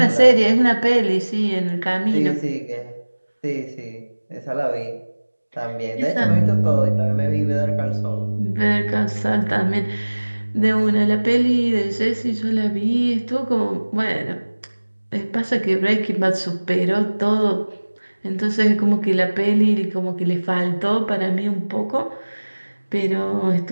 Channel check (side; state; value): both; inverted; correlation -1.00